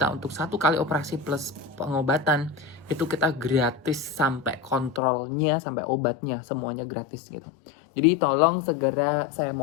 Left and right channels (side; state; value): right; drops out; at 5.0 s